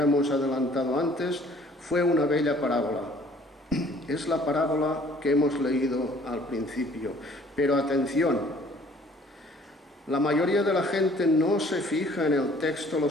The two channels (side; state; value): both; normal; correlation 0.56